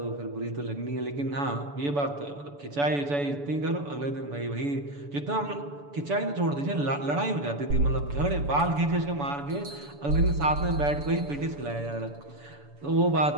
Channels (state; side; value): late; left; 7.0 ms